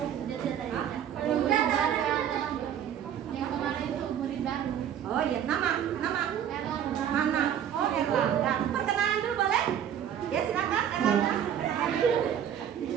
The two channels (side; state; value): left; quieter; 9.5 dB